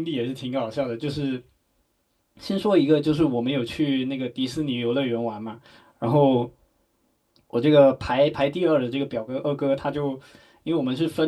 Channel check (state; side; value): identical; both; correlation 1.00